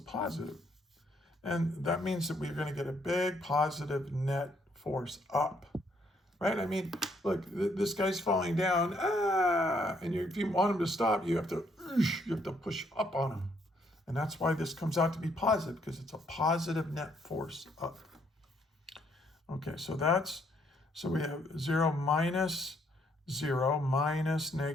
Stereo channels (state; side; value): normal; both; correlation 0.70